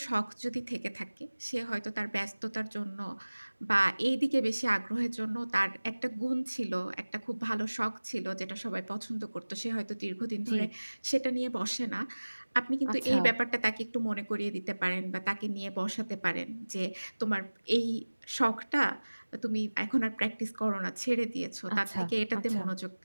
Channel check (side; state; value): both; inverted; correlation -1.00